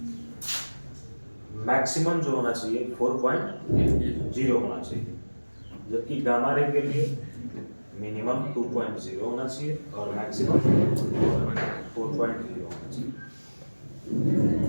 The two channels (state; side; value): inverted; both; correlation -1.00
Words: मैक्सिमम जो होना चाहिए 4.0 होना चाहिए, जबकि गामा रे के लिए मिनिमम 2.0 होना चाहिए और मैक्सिमम 4.0 होना चाहिए।